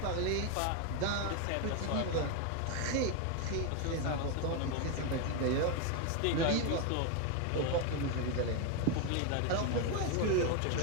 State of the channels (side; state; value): both; different; correlation 0.01